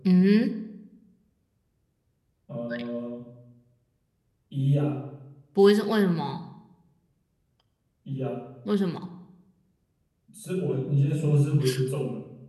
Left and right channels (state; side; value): identical; both; correlation 1.00